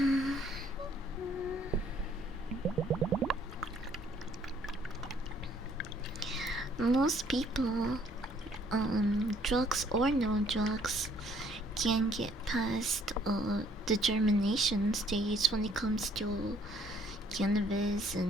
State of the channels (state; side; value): normal; both; correlation 0.62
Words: Most people, drugs or no drugs, can get past the germination stage when it comes to cannabis